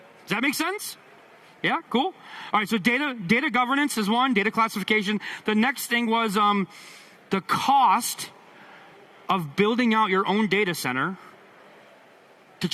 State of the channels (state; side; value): identical; both; correlation 1.00